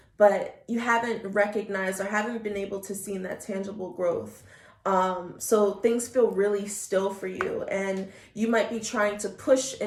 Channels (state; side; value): identical; both; correlation 1.00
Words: but you haven't recognized or haven't been able to see that tangible growth. So things feel really still for you, and you might be trying to push,